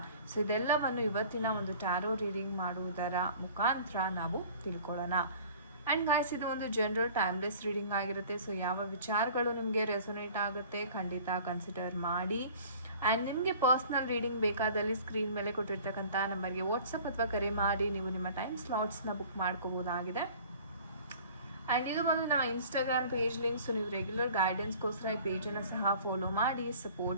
ಸೊ ಇದೆಲ್ಲವನ್ನು ಇವತ್ತಿನ ಒಂದು ಟ್ಯಾರೋ ರೀಡಿಂಗ್ ಮಾಡುವುದರ ಮುಖಾಂತರ ನಾವು ತಿಳ್ಕೊಳ್ಳೋಣ. ಆ್ಯಂಡ್ ಗಾಯ್ಸ್, ಇದು ಒಂದು ಜನರಲ್ ಟೈಮ್ಲೆಸ್ ರೀಡಿಂಗ್ ಆಗಿರುತ್ತೆ. ಸೊ ಯಾವ ವಿಚಾರಗಳು ನಿಮಗೆ ರೆಸೊನೇಟ್ ಆಗುತ್ತೆ ಖಂಡಿತ ಕನ್ಸಿಡರ್ ಮಾಡಿ. ಆ್ಯಂಡ್ ನಿಮಗೆ ಪರ್ಸ್ನಲ್ ರೀಡಿಂಗ್ ಬೇಕಾದಲ್ಲಿ ಸ್ಕ್ರೀನ್ ಮೇಲೆ ಕೊಟ್ಟಿರ್ತಕ್ಕಂಥ ನಂಬರ್ಗೆ ವಾಟ್ಸಪ್ ಅಥವಾ ಕರೆ ಮಾಡಿ ನೀವು ನಿಮ್ಮ ಟೈಮ್ ಸ್ಲಾಟ್ಸ್ನ ಬುಕ್ ಮಾಡ್ಕೋಬೋದಾಗಿದೆ. ಆ್ಯಂಡ್ ಇದು ಒಂದು ನಮ್ಮ ಇನ್ಸ್ಟಾಗ್ರಾಮ್ ಪೇಜ್ ಲಿಂಕ್. ಸೊ ನೀವು ರೆಗ್ಯುಲರ್ ಗೈಡೆನ್ಸ್ಗೋಸ್ಕರ ಈ ಪೇಜನ್ನು ಸಹ ಫಾಲೋ ಮಾಡಿ,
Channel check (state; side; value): inverted; both; correlation -0.47